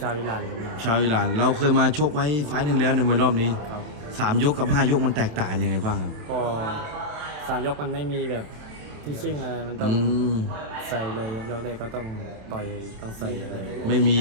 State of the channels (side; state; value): left; late; 27 ms